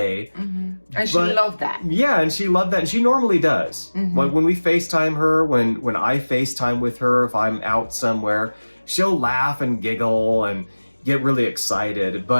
And she loved that. Yeah, and she loved that. And she normally does. When we FaceTime her, when I FaceTime with her, if I'm out somewhere, she'll laugh and giggle and get really excited.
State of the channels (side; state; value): both; inverted; correlation -1.00